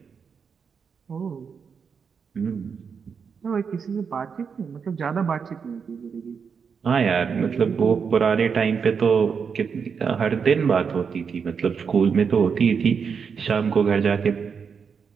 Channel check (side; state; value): left; quieter; 6.2 dB